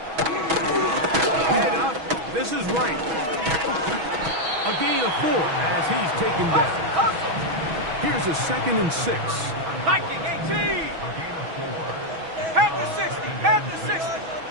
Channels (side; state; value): left; late; 6.2 ms